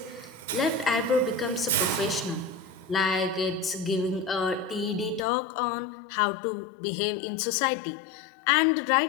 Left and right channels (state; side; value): drops out; right; at 5.2 s